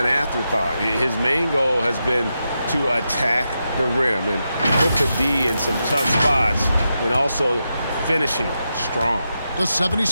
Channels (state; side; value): inverted; both; correlation -0.87